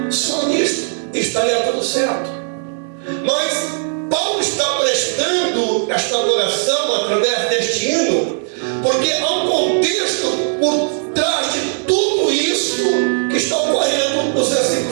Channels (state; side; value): silent; left; 62 dB below the other